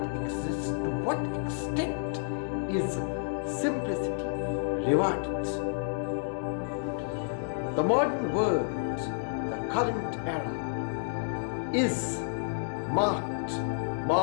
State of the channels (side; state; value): right; silent; digital silence